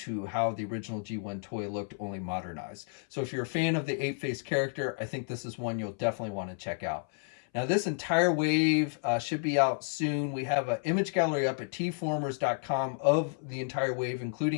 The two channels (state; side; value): silent; right; 57 dB below the other